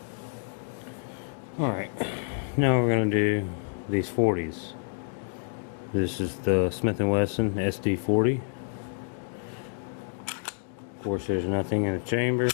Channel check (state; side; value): silent; right; digital silence